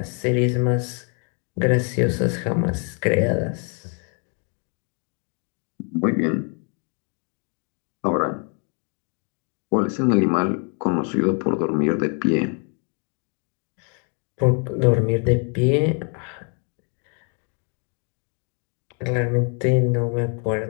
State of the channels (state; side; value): quieter; right; 39.8 dB